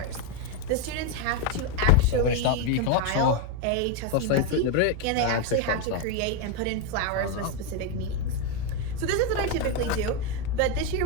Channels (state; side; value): different; both; correlation 0.02